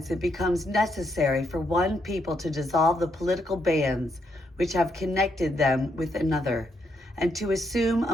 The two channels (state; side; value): normal; both; correlation 0.77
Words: it becomes necessary for one people to dissolve the political bands which have connected them with another, and to assume